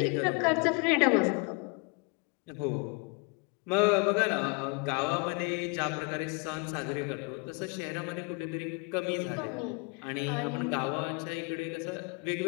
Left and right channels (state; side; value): quieter; right; 31.6 dB